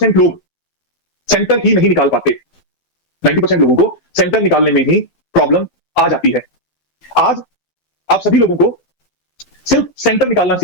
लोग सेंटर ही नहीं निकाल पाते। 90% लोगों को सेंटर निकालने में ही प्रॉब्लम आ जाती है। आज आप सभी लोगों को सिर्फ सेंटर निकालना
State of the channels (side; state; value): right; late; 12 ms